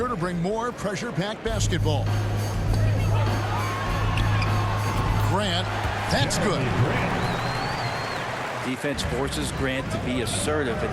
to bring more pressure-packed basketball. Grant, that's good. Defense forces Grant to be assertive,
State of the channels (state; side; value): identical; both; correlation 1.00